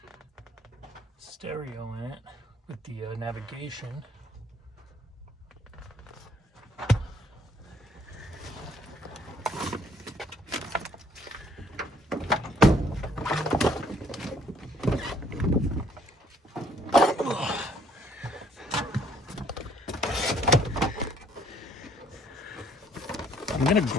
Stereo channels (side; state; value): both; normal; correlation 0.63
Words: stereo in it with the navigation. I'm gonna